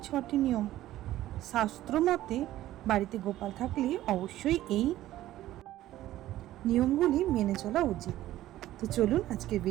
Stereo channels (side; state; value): left; quieter; 14.5 dB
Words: 6টি নিয়ম। শাস্ত্র মতে বাড়িতে গোপাল থাকলে অবশ্যই এই নিয়মগুলি মেনে চলা উচিত। তো চলুন আজকের